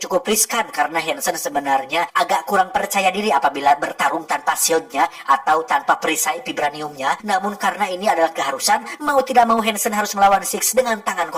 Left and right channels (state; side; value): identical; both; correlation 1.00